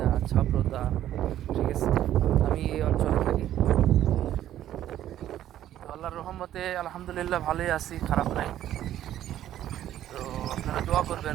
ছাব্রতা, ঠিক আছে। আমি এই অঞ্চলে থাকি, তো আল্লাহর রহমতে আলহামদুলিল্লাহ ভালোই আছি, খারাপ নাই। তো আপনারা দোয়া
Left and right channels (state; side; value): quieter; left; 12.1 dB